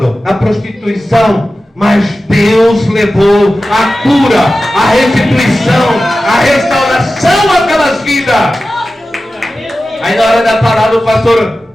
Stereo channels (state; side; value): normal; both; correlation 0.94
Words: na prostituição. Mas Deus levou a cura, a restituição, a restauração àquelas vidas. Aí na hora da palavra o pastor,